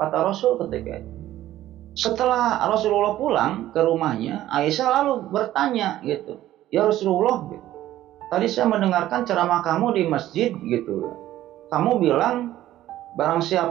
Rasul ketika itu. Setelah Rasulullah pulang ke rumahnya, Aisyah lalu bertanya gitu, ya Rasulullah gitu, tadi saya mendengarkan ceramah kamu di masjid gitu, kamu bilang barang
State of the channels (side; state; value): left; quieter; 13.9 dB